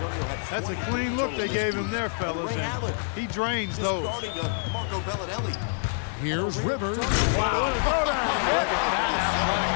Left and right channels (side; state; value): right; silent; digital silence